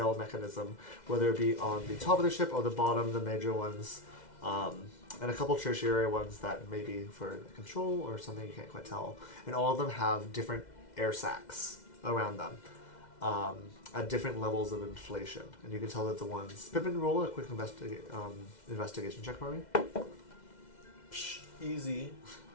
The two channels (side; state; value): right; late; 2.1 ms